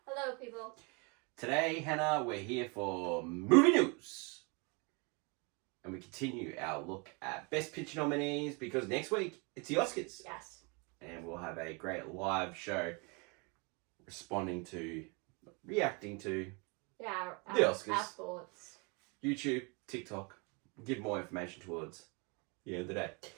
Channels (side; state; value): left; quieter; 31.5 dB